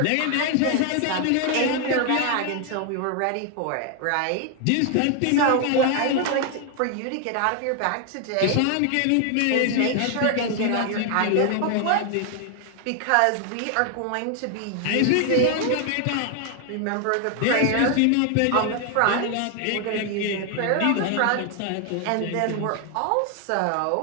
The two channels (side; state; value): both; different; correlation 0.00